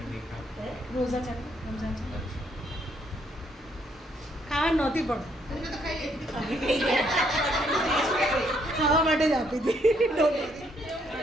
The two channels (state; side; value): normal; both; correlation 0.71